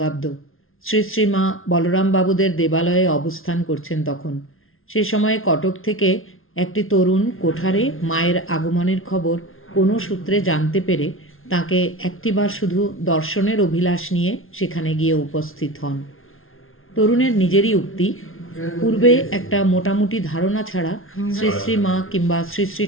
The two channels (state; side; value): late; right; 0.60 ms